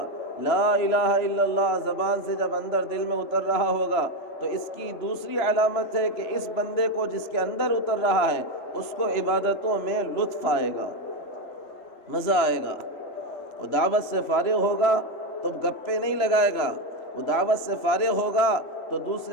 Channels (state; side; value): late; right; 3.0 ms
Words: لا الہ الا اللہ زبان سے جب اندر دل میں اتر رہا ہوگا، تو اس کی دوسری علامت ہے کہ اس بندے کو جس کے اندر اتر رہا ہے اس کو عبادتوں میں لطف آئے گا، مزہ آئے گا۔ وہ دعوت سے فارغ ہوگا تو گپے نہیں لگائے گا، وہ دعوت سے فارغ ہوگا تو